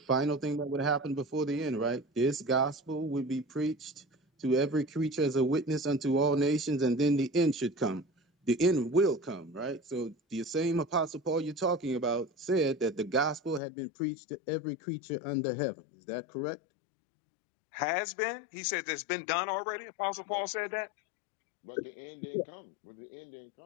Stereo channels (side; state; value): right; drops out; at 13.6 s